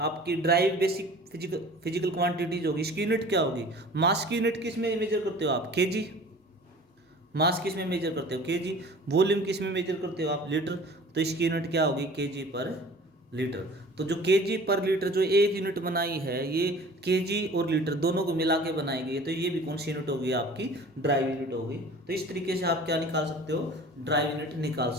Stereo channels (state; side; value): normal; both; correlation 0.45